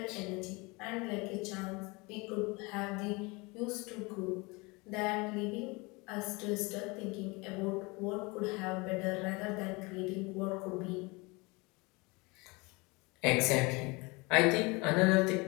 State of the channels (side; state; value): right; quieter; 26.2 dB